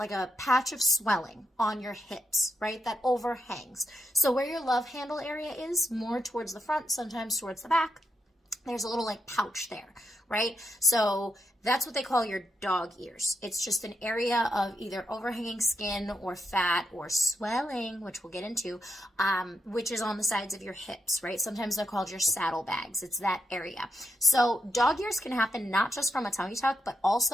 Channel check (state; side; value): normal; both; correlation 0.82